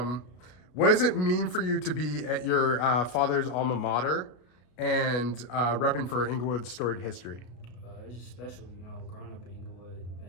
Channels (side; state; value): right; late; 33 ms